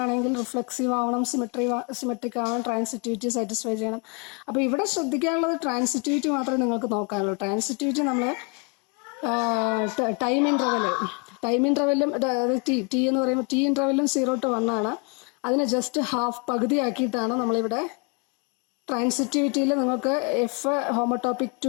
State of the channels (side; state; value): right; quieter; 33.1 dB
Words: ആണെങ്കിൽ റിഫ്ലെക്സീവ് ആവണം, സിമെട്രിക് ആവണം, ട്രാൻസിറ്റിവിറ്റി സാറ്റിസ്ഫൈ ചെയ്യണം. അപ്പോൾ ഇവിടെ ശ്രദ്ധിക്കാനുള്ളത് ട്രാൻസിറ്റിവിറ്റി മാത്രമേ നിങ്ങൾക്ക് നോക്കാനുള്ളൂ. ട്രാൻസിറ്റിവിറ്റി നമ്മൾ ടൈം ഇൻ്റർവെല്ലും അതായത് ടി എന്ന് പറയുമ്പോൾ ടി ഇൻ്റർവെല്ലും 0 to 1 ആണ്. അതിനെ ജസ്റ്റ് പകുതിയാക്കിയിട്ടാണ് നമ്മളിവിടെ ട്രാൻസിറ്റിവിറ്റിയിൽ നിങ്ങൾക്ക് f homotopic